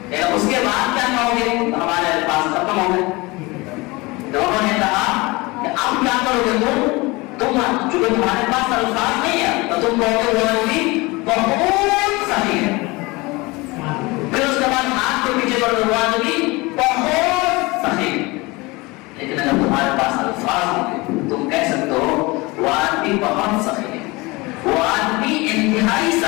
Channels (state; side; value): quieter; right; 23.7 dB